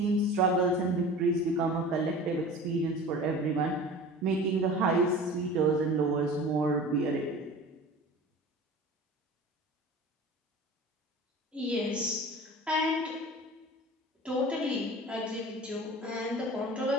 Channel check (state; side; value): normal; both; correlation 0.38